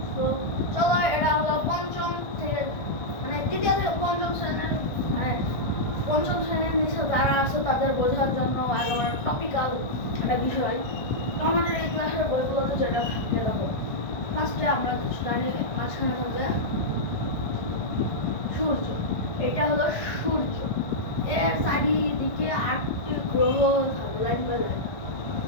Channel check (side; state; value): right; late; 1.6 ms